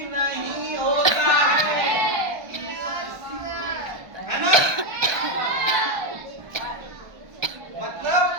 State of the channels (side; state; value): left; late; 1.2 ms